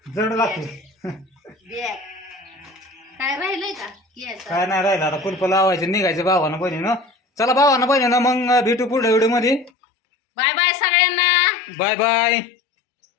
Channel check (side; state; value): right; drops out; at 9.7 s